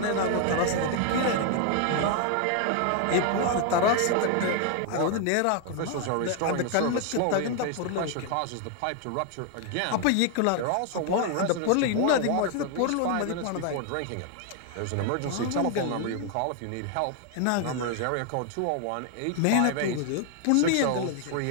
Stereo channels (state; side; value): different; both; correlation 0.00